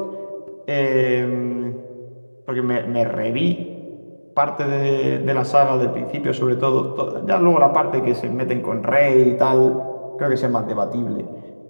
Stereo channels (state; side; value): inverted; both; correlation -1.00